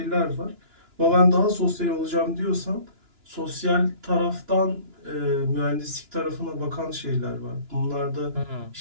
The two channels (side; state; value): left; late; 2.9 ms